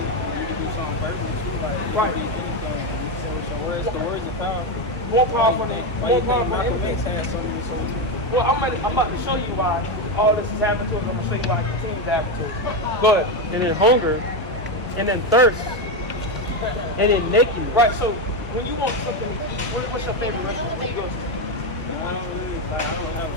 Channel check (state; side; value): normal; both; correlation 0.10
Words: You can do something verbal too, like you Right. can do anything. You can say with your words, the words are powerful. More powerful than Why you think Malcolm X anything. had so many soldiers? Well, I'm about to show you why all this is happening to us. I'm gonna show you why it continues to happen to us. Go ahead. And then hunger, and then thirst, and then nakedness. Right. So when you want something to eat, what's your favorite restaurant? Where you go to? I don't have